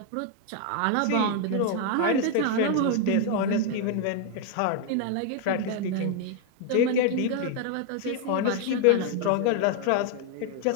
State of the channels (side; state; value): both; different; correlation 0.01